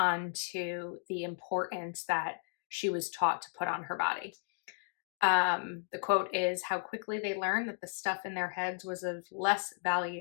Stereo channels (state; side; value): silent; right; 55 dB below the other